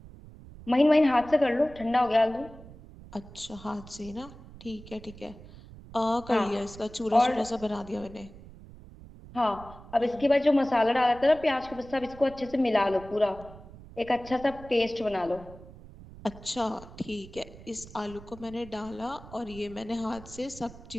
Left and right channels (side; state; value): right; noise; rumble, 18 dB below the sound